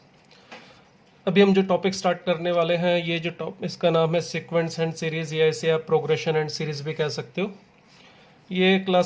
अभी हम जो टॉपिक स्टार्ट करने वाले हैं ये जो इसका नाम है सीक्वेंस एंड सीरीज़, या इसे आप प्रोग्रेशन एंड सीरीज़ भी कह सकते हो। ये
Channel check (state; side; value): identical; both; correlation 1.00